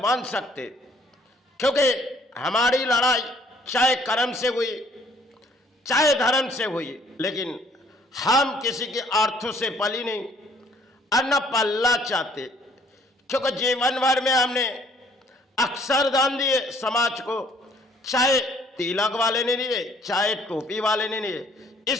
सकते, क्योंकि हमारी लड़ाई चाहे कर्म से हुई चाहे धर्म से हुई, लेकिन हम किसी के अर्थों से पली नहीं और न पलना चाहते, क्योंकि जीवन भर में हमने अक्सर दान दिए समाज को, चाहे तिलक वाले ने लिए चाहे टोपी वाले ने लिए।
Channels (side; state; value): both; normal; correlation 0.61